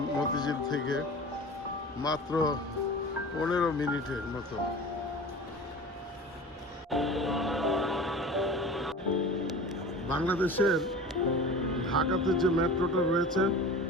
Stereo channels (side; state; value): both; normal; correlation 0.37